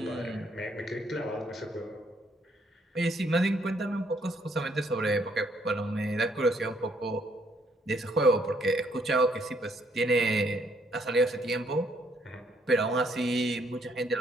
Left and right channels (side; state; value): both; normal; correlation 0.69